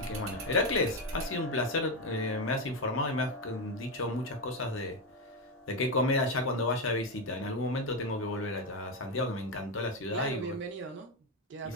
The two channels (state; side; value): normal; both; correlation 0.10